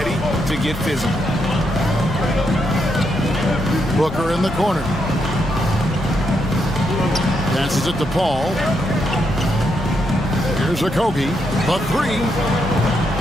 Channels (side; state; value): both; normal; correlation 0.80